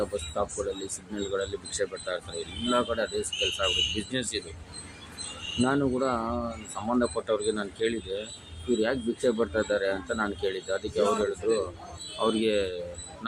ಬಸ್ ಸ್ಟಾಪ್ಗಳಲ್ಲಿ, ಸಿಗ್ನಲ್ಗಳಲ್ಲಿ ಭಿಕ್ಷೆ ಬಿಡ್ತಾ ಇರ್ತಾರೆ. ಎಲ್ಲ ಕಡೆ ಅದೇ ಕೆಲಸ ಆಗ್ಬಿಟ್ಟು ಬಿಸ್ನೆಸ್ ಇದು. ನಾನು ಕೂಡ ಸಂಬಂಧಪಟ್ಟವ್ರಿಗೆ ನಾನು ಕೇಳಿದೆ, ಇವ್ರು ಯಾಕೆ ಭಿಕ್ಷೆ ಬಿಡ್ತಾ ಇದ್ದಾರೆ ಅಂತ ನಾನು ಕೇಳಿದ್ದೆ. ಅದಕ್ಕೆ ಅವ್ರು ಹೇಳಿದ್ರು, ಅವ್ರಿಗೆ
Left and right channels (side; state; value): both; identical; correlation 1.00